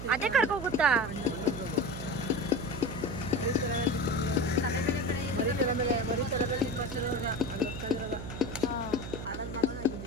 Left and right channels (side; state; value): right; noise; hum, 8 dB below the sound